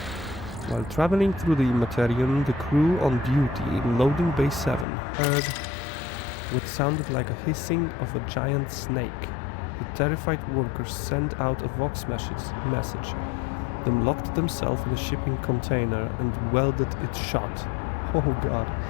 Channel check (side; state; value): right; drops out; at 4.9 s